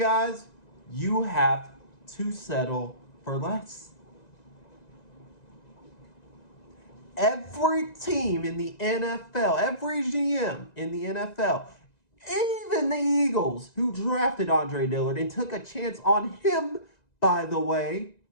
you have to settle for less. Every team in the NFL, every GM in the NFL, even the Eagles, who drafted Andre Dillard and took a chance on him, by the way,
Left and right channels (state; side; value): late; right; 1.9 ms